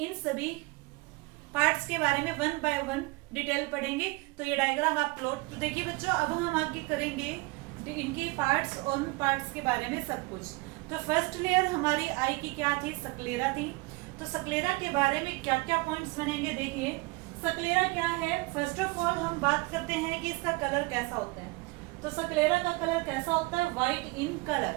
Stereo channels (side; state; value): left; quieter; 24.8 dB